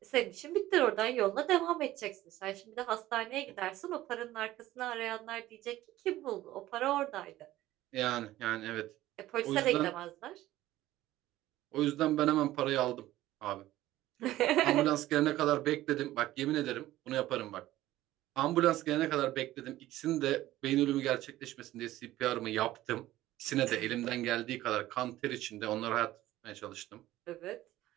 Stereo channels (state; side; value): quieter; left; 15.4 dB